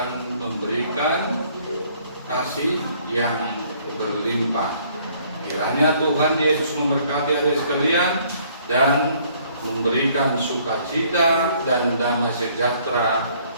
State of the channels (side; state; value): both; inverted; correlation -0.62